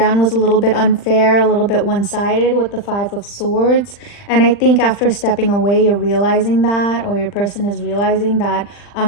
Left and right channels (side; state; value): right; late; 40 ms